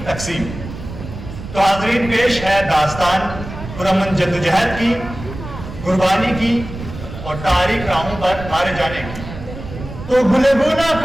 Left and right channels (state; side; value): noise; right; rumble, 11 dB below the sound